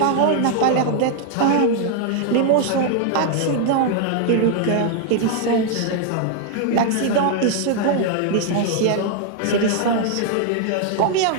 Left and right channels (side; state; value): both; different; correlation 0.00